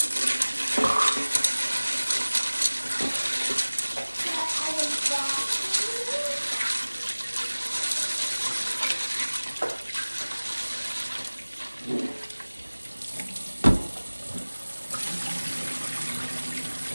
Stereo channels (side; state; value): both; inverted; correlation -1.00